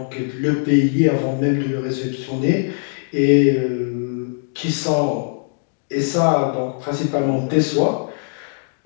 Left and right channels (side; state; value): right; silent; digital silence